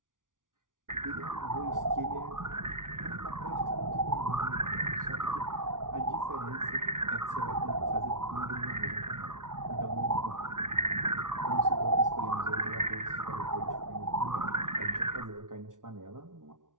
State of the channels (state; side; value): late; left; 0.88 ms